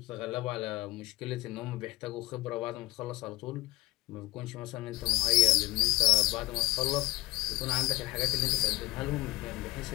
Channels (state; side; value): quieter; right; 20.1 dB